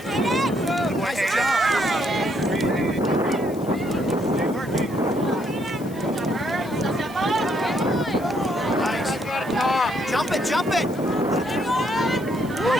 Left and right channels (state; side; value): noise; left; hiss, 22 dB below the sound